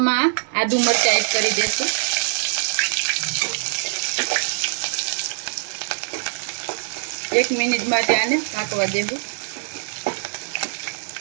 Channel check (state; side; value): silent; left; digital silence